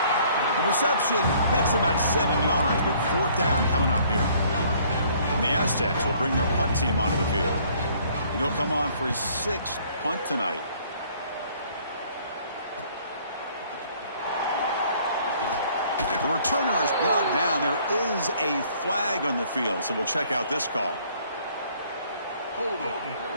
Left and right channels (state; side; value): inverted; both; correlation -0.60